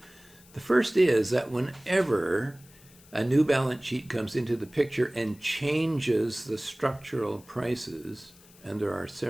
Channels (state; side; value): noise; left; hiss, 25 dB below the sound